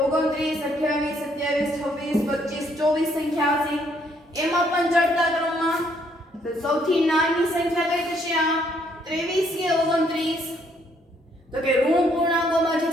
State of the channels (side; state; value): both; normal; correlation 0.69